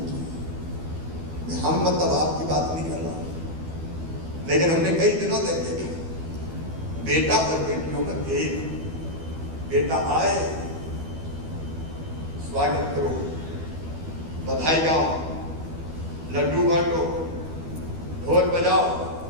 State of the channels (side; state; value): left; late; 12 ms